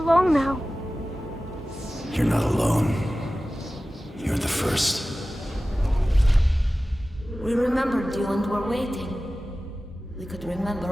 now. You're not alone. You're the first. We remembered you and were waiting. We could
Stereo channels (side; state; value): both; normal; correlation 0.96